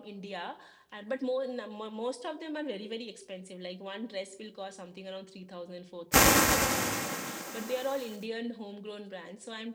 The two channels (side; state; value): both; identical; correlation 1.00